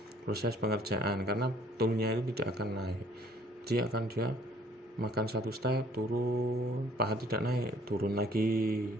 proses pengerjaan, karena toolnya itu tidak akan naik. Dia makan 1 step, turun, paha tidak naik, turun lagi,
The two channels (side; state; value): both; normal; correlation 0.58